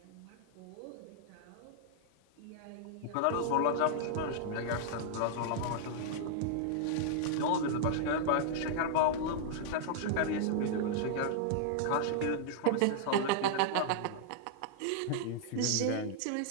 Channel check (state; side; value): different; both; correlation -0.01